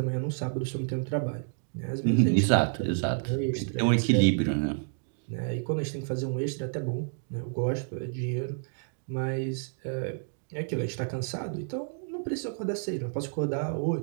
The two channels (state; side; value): silent; left; digital silence